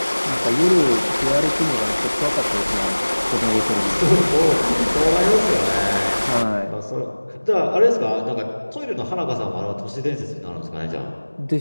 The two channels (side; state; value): both; inverted; correlation -1.00